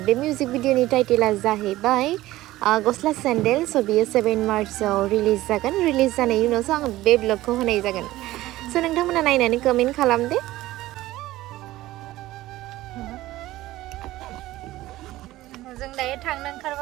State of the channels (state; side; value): quieter; left; 16.5 dB